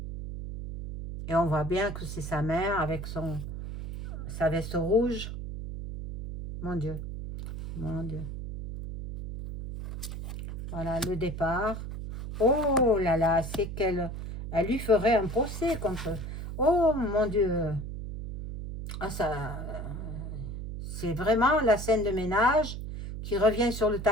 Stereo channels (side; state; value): right; noise; hum, 7 dB below the sound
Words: Et on voit bien que c'est sa mère avec sa veste rouge. Mon Dieu, mon Dieu. Voilà, le départ. Oh là là, c'est qu'elle lui ferait un procès contre... Oh mon Dieu. Ah, ça, c'est vraiment la scène de ménage qui revient sur le